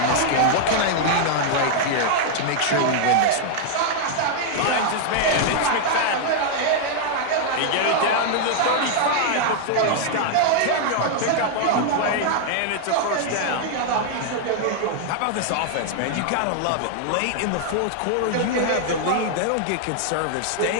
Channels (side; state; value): both; different; correlation -0.01